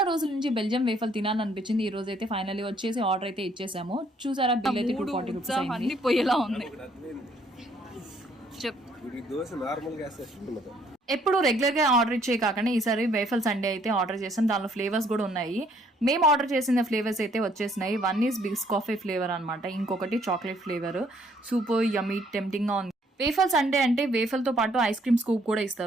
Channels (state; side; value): normal; both; correlation 0.65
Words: రోజుల నుంచి బెల్జియం వేఫల్ తినాలనిపించింది. ఈ రోజు అయితే ఫైనల్లీ వచ్చేసి ఆర్డర్ అయితే ఇచ్చేసాము. చూసారా, బిల్ అయితే 240 రూపీస్ అయింది. పోయేలా ఉంది. ఎప్పుడు రెగ్యులర్ గా ఆర్డర్ ఇచ్చే కాకుండా ఈసారి వేఫల్ సండే అయితే ఆర్డర్ చేసాం. దానిలో ఫ్లేవర్స్ కూడా ఉన్నాయి. మేము ఆర్డర్ చేసిన ఫ్లేవర్స్ అయితే వచ్చేసినాయి. వన్ ఈస్ బిస్కాఫీ ఫ్లేవర్ అనమాట, ఇంకొకటి చాక్లెట్ ఫ్లేవర్. సూపర్ యమ్మీ, టెంప్టింగ్ గా ఉంది. వేఫల్ సండే అంటే వేఫల్ తో పాటు ఐస్ క్రీమ్ స్కూప్ కూడా